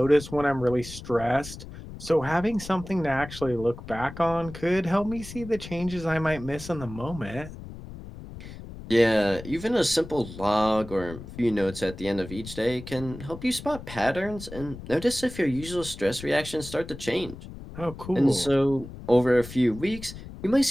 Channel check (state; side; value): noise; left; rumble, 13 dB below the sound